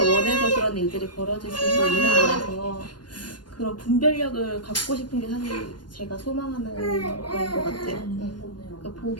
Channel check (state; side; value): late; right; 0.71 ms